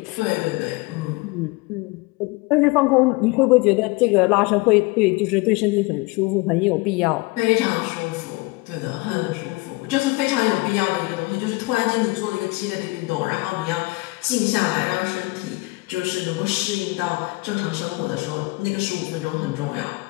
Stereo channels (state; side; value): quieter; right; 23.9 dB